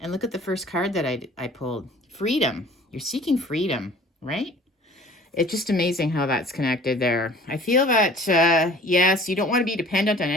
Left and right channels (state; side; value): normal; both; correlation 0.48